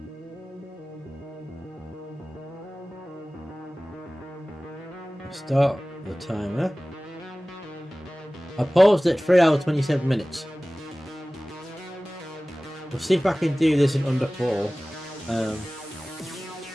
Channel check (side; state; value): both; normal; correlation 0.98